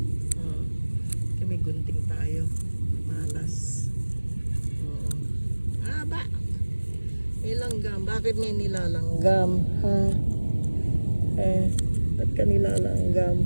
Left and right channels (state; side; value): inverted; both; correlation -1.00